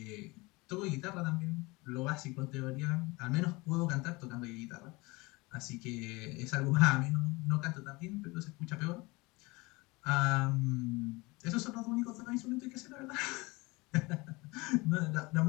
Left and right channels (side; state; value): right; quieter; 24.0 dB